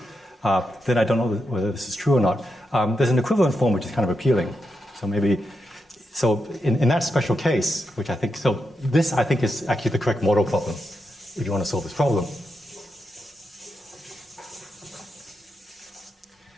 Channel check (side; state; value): both; normal; correlation 0.85